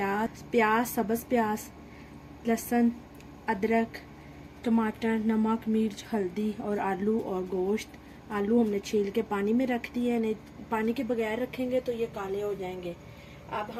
सब्ज़ प्याज, लहसुन, अदरक, टमाटर, नमक, मिर्च, हल्दी और आलू और गोश्त। आलू हमने छील के पानी में रख दिए, नहीं पानी के बगैर रखेंगे तो ये काले हो जाएंगे। अब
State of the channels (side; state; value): both; identical; correlation 1.00